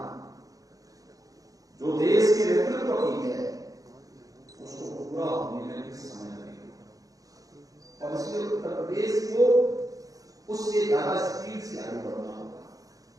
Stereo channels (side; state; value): left; late; 0.17 ms